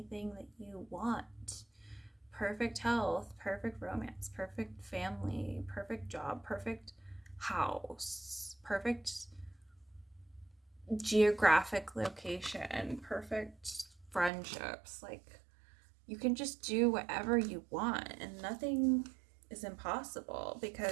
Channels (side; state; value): left; drops out; at 14.3 s